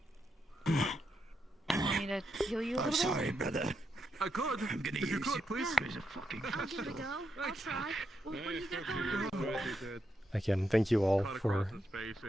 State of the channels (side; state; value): both; normal; correlation 0.83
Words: you want me to heal you a I'm little sorry, brother. I could. I'm gonna If you use could, you please. as a fucking bit? Give it a go. I'll try. What do you got going? Again, thank you all for